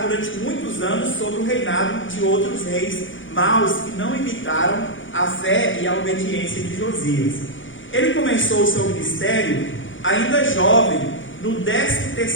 durante muitos anos sobre o reinado de outros reis maus que não imitaram a fé e a obediência de Josias. Ele começou o seu ministério ainda jovem, no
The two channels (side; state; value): right; late; 0.56 ms